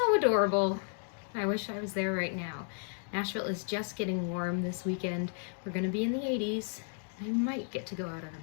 adorable. I wish I was there right now. Nashville is just getting warm this weekend. We're going to be in the 80s. I might get to go out on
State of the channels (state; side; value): silent; right; 56 dB below the other